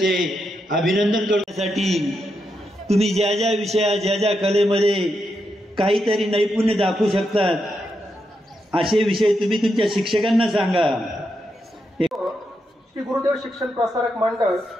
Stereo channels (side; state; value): both; normal; correlation 0.84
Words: अभिनंदन करण्यासाठी तुम्ही ज्या ज्या विषयात ज्या ज्या कलेमध्ये काहीतरी नैपुण्य दाखवू शकतात असे विषय तुम्ही तुमच्या शिक्षकांना सांगा. श्री गुरुदेव शिक्षण प्रसारक मंडळ